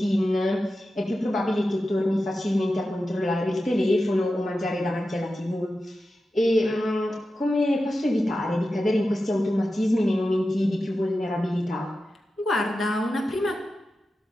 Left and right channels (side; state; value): both; normal; correlation 0.92